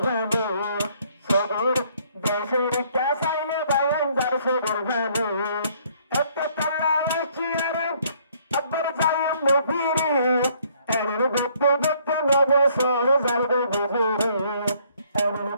সবর দেশের একটা সাইলে বায়ান সারছে গর্ভানো একটা পাল্লা এসছি আর আব্বার যাইম নফিরি এর গপ্পে গপ্পে নবসর সারব ঘুমেরি এর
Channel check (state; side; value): inverted; both; correlation -0.64